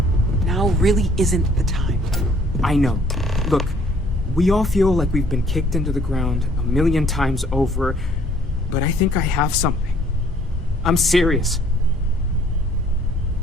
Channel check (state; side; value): normal; both; correlation 0.60